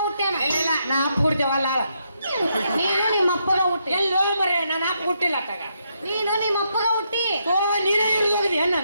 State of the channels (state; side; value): inverted; both; correlation -0.79